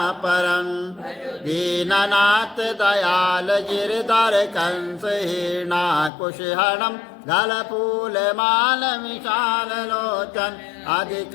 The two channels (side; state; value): right; drops out; at 6.1 s